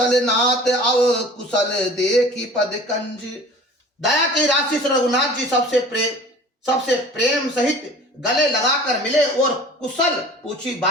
नाथ अव कुशल देखी पद कंज। दया की राशि से रघुनाथ जी सबसे प्रेम सहित गले लगाकर मिले और कुशल पूछी।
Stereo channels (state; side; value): normal; both; correlation 0.44